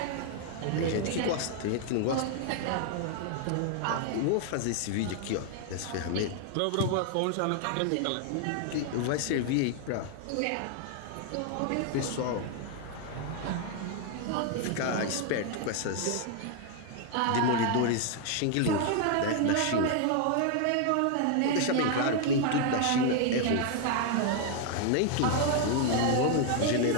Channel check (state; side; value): different; both; correlation 0.00